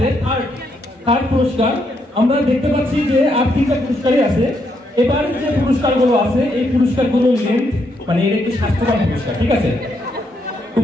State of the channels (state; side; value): normal; both; correlation 0.77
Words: থার্ড পুরস্কার। আমরা দেখতে পাচ্ছি যে আর 3টা পুরস্কারই আছে। এবার যে পুরস্কারগুলো আছে এই পুরস্কারগুলো লেন্থ মানে এর একটু স্বাস্থ্যবান পুরস্কার, ঠিক আছে?